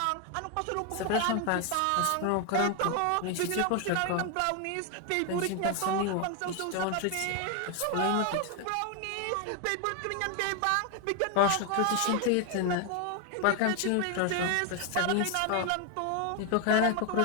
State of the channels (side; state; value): both; different; correlation 0.01